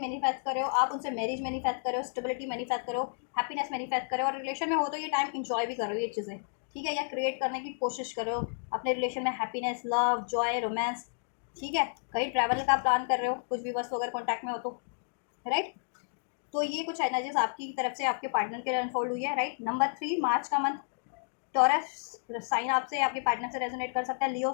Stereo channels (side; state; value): right; silent; digital silence